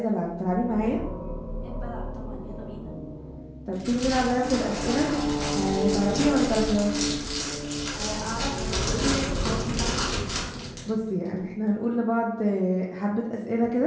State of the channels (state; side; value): identical; both; correlation 1.00